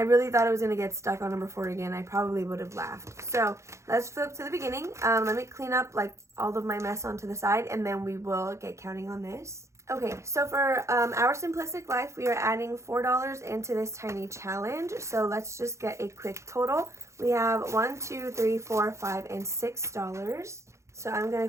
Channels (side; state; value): left; late; 0.14 ms